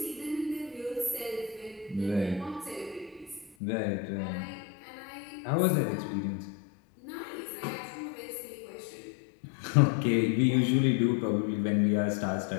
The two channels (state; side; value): drops out; right; at 3.6 s